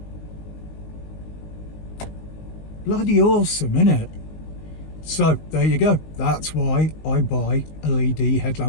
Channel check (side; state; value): right; late; 19 ms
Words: Bloody awesome, innit? So there you go. That's why I buy LED